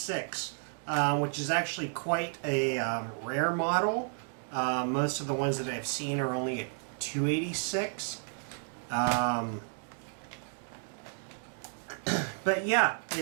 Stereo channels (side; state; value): left; silent; 56 dB below the other